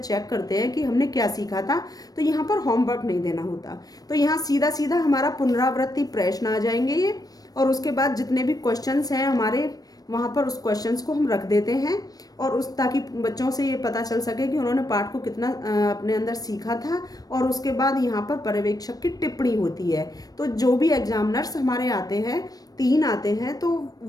करते हैं कि हमने क्या सीखा था। तो यहाँ पर होमवर्क नहीं देना होता, तो यहाँ सीधा सीधा हमारा पुनरावृत्ति प्रश्न आ जाएंगे ये, और उसके बाद जितने भी क्वेश्चंस हैं हमारे वहाँ पर उस क्वेश्चंस को हम रख देते हैं, और उस ताकि बच्चों से ये पता चल सके कि उन्होंने पाठ को कितना अपने अंदर सीखा था। और उसके बाद यहाँ पर पर्यवेक्षक की टिप्पणी होती है। तो जो भी एग्जामिनर्स हमारे आते हैं, 3 आते हैं, तो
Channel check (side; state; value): right; late; 0.18 ms